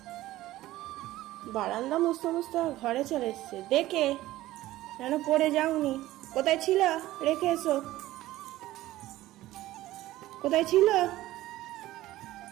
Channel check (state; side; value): quieter; left; 16.0 dB